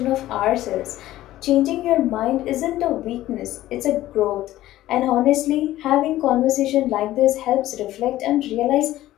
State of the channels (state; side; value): quieter; right; 14.9 dB